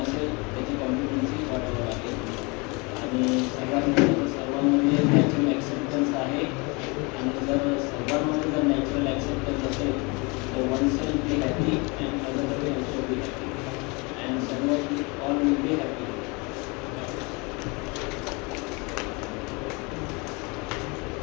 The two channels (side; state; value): right; quieter; 28.4 dB